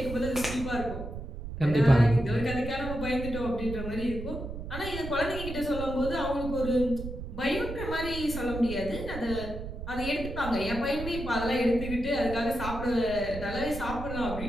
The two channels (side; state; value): right; noise; rumble, 8 dB below the sound